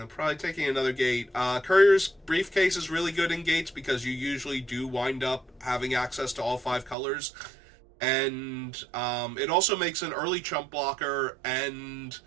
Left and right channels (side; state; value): left; drops out; at 7.0 s